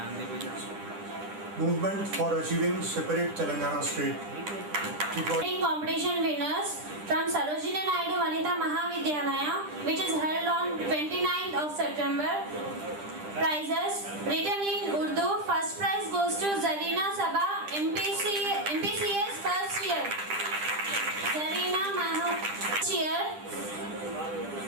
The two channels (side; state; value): left; late; 10 ms